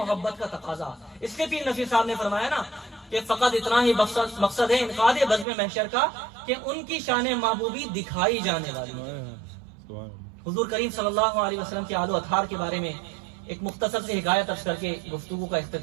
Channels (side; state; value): left; drops out; at 5.5 s